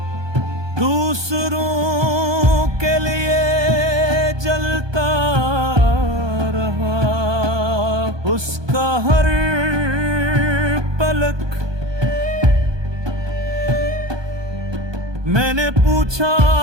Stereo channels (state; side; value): late; left; 1.2 ms